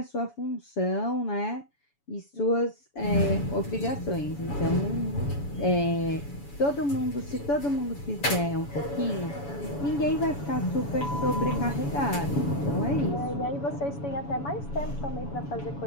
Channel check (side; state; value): right; late; 7.0 ms